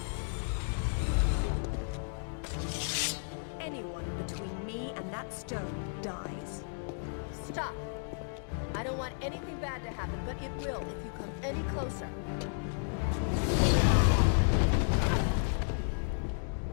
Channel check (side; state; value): right; silent; digital silence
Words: Anyone between me and that stone dies. Stop! I don't want anything bad to happen, but it will if you come any closer.